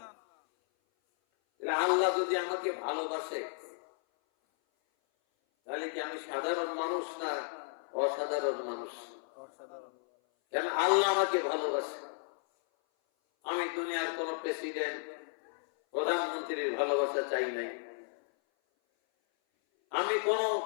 আল্লাহ যদি আমাকে ভালোবাসে, তাহলে কি আমি সাধারণ মানুষ না অসাধারণ মানুষ? কেন আল্লাহ আমাকে ভালোবাসে। আমি দুনিয়ার কোন প্রেসিডেন্ট প্রধানমন্ত্রীর ভালোবাসা চাই নাই, আমি কোন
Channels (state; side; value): silent; right; 55 dB below the other